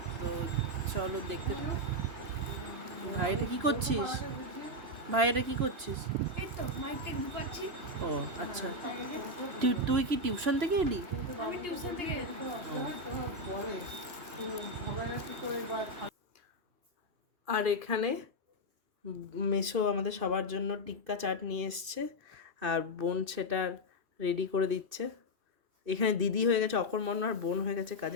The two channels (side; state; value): left; late; 2.7 ms